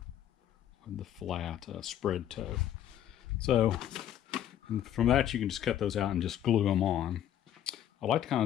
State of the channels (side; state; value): right; quieter; 11.0 dB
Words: the flat spread toe. So from that you can just cut those out and just glue them on. I like to kind